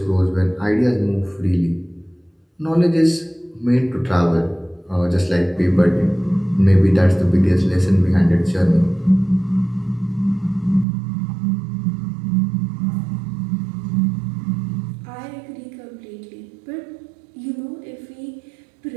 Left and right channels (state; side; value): drops out; left; at 10.9 s